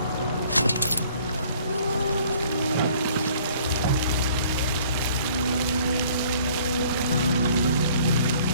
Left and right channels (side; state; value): both; inverted; correlation -0.57